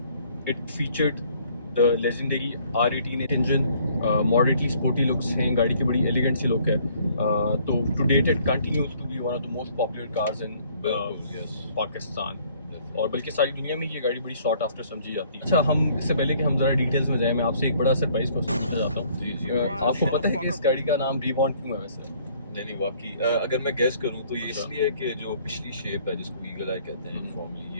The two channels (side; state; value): both; inverted; correlation -0.61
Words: It featured the legendary R18 engine, moderately sporty looks हैं, गाड़ी की बड़ी elegant सी look है. तो to date it continues to be one of the most popular cars in yes. Pakistan. और बल्कि सारी दुनिया में ये गाड़ी बड़ी शॉर्ट आफ्टर समझी जाती है. अच्छा, हम इससे पहले कि हम ज़रा डिटेल्स में जाएं, मैं आपसे एक बड़ा सरप्राइज क्वेश्चन पूछना चाहता हूँ. आपको पता है कि इस गाड़ी का नाम रिबॉर्न क्यों है वैसे? नहीं वाकई अगर मैं गेस करूँ तो ये इसलिए कि जो पिछली शेप है जिसको ईगल आई कहते हैं फॉर्मली,